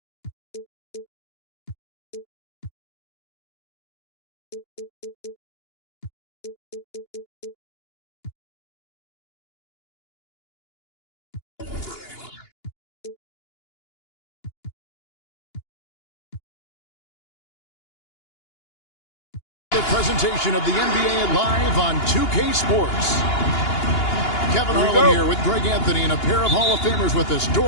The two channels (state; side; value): late; right; 2.8 ms